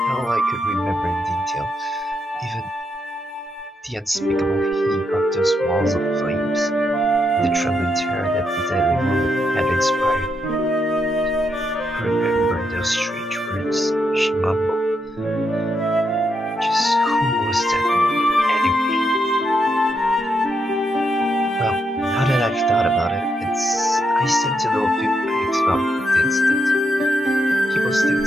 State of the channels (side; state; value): both; normal; correlation 0.81